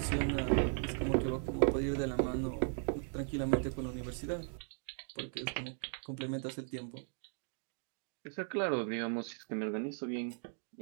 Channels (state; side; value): silent; left; 53 dB below the other